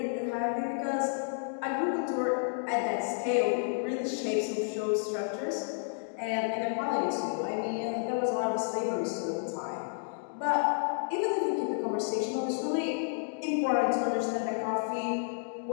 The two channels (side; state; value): right; silent; digital silence